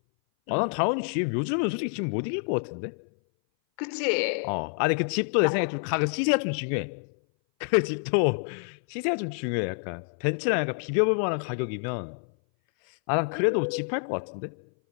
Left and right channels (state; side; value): silent; right; 58 dB below the other